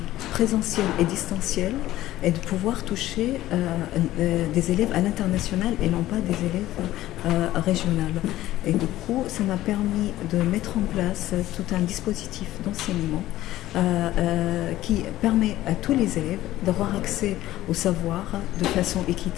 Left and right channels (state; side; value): quieter; right; 15.1 dB